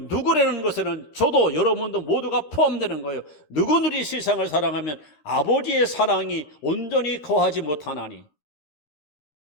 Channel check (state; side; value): late; right; 13 ms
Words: 것에는 저도 여러분도 모두가 포함되는 거예요. 누구들이 세상을 사랑하면 아버지의 사랑이 온전히 거하지 못하나니